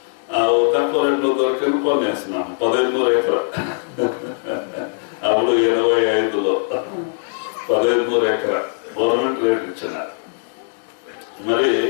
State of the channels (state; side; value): silent; right; digital silence